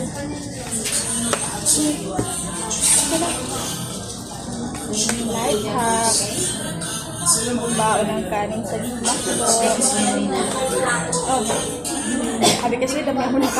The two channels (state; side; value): identical; both; correlation 1.00